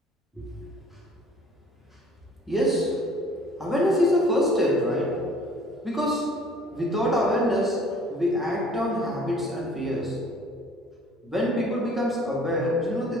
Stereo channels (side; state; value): both; normal; correlation 0.53